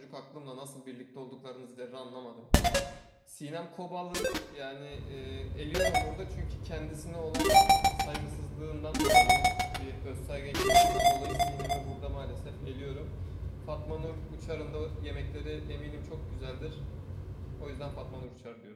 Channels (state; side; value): identical; both; correlation 1.00